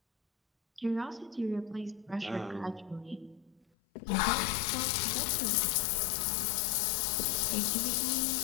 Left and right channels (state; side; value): drops out; right; at 3.7 s